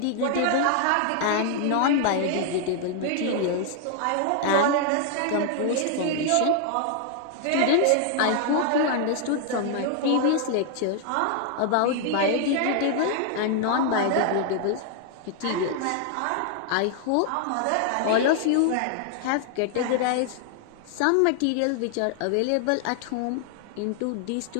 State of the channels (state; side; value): different; both; correlation 0.00